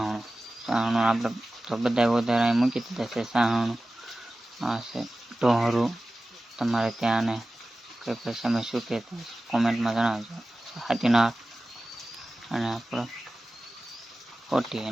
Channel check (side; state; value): both; normal; correlation 0.96